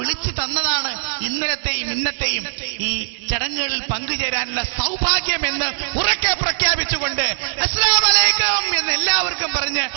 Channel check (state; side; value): silent; left; digital silence